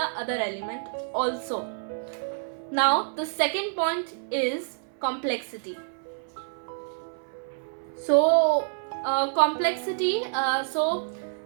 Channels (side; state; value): left; silent; 60 dB below the other